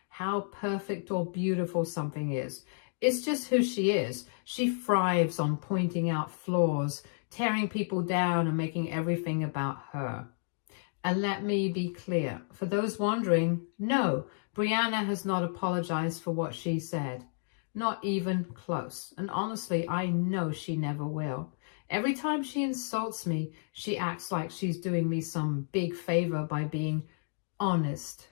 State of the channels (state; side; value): silent; right; digital silence